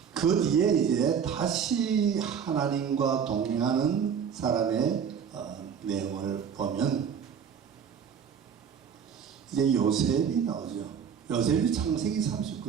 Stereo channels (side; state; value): left; quieter; 7.4 dB